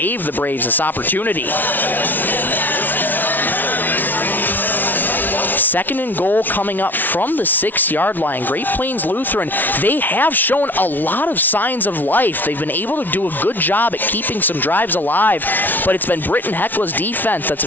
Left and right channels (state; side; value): late; right; 0.086 ms